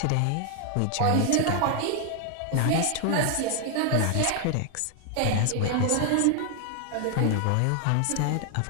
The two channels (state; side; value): different; both; correlation 0.00